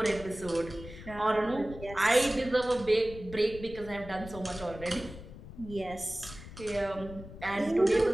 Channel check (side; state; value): left; noise; rumble, 14 dB below the sound